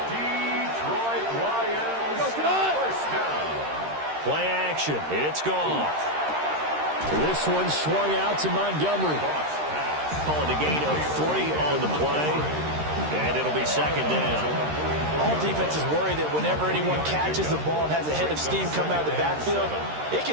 Detroit Lions first down. Play action. It's Goff. This one swung out to Montgomery. Calling a gain of 3 on the play. And it'll be second down. All defenses worry that whenever anyone catches the ball and has a head of steam come out of the backfield, it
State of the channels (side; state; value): left; late; 13 ms